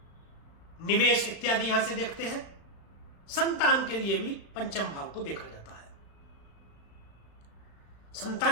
निवेश इत्यादि यहां से देखते हैं। संतान के लिए भी पंचम भाव को देखा जाता है।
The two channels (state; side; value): late; right; 36 ms